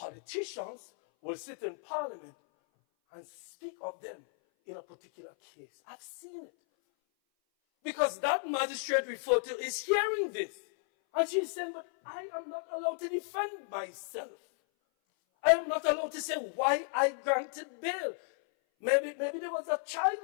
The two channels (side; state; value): right; silent; 55 dB below the other